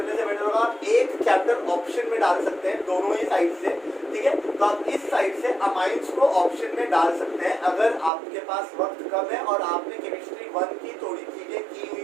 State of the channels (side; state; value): left; drops out; at 8.1 s